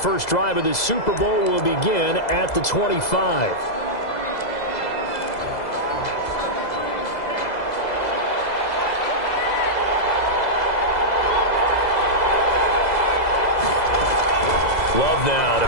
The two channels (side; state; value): right; late; 2.0 ms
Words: drive of this Super Bowl will begin at the 25. Love now to